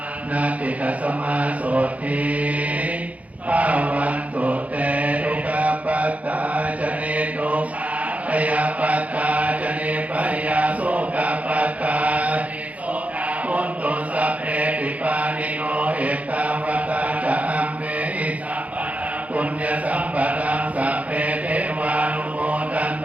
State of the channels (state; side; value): late; left; 0.068 ms